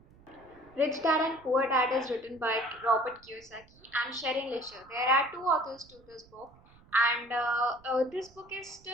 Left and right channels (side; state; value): right; noise; rumble, 26 dB below the sound